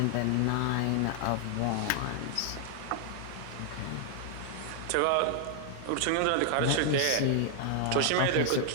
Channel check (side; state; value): both; different; correlation 0.00